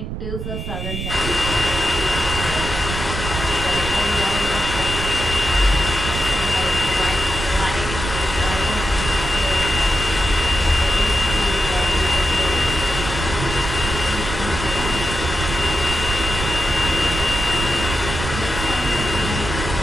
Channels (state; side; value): noise; right; rumble, 5 dB below the sound